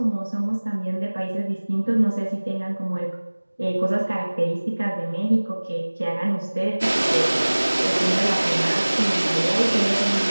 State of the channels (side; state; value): both; inverted; correlation -1.00